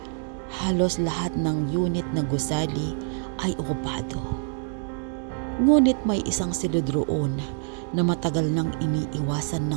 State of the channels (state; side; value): silent; left; 61 dB below the other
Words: Halos lahat ng unit na gusali ay okupado. Ngunit may isang silid roon na matagal nang iniiwasan